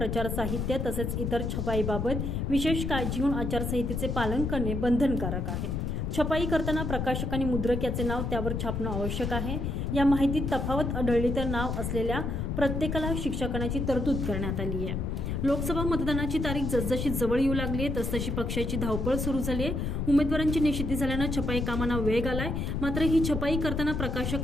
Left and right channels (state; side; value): noise; left; rumble, 2 dB below the sound